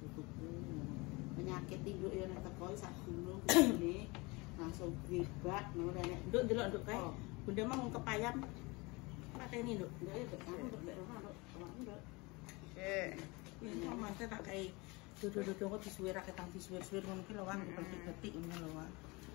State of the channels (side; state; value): right; quieter; 25.5 dB